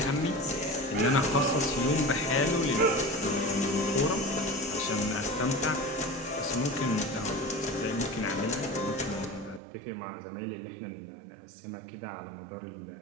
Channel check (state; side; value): drops out; left; at 9.6 s